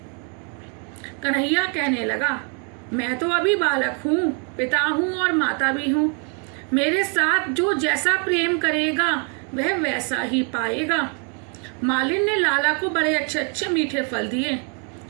कन्हैया कहने लगा, मैं तो अभी बालक हूँ, पिता हूँ और माता भी हूँ। मेरे साथ जो जैसा प्रेम करेगा वह वैसा ही पाएगा। मालिन ने लाला को बड़े अच्छे अच्छे मीठे फल दिए।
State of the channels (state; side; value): quieter; left; 38.7 dB